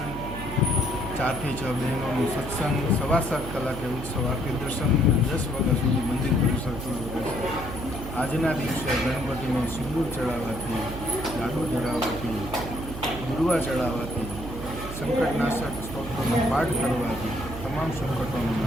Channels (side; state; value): right; noise; hum, 9 dB below the sound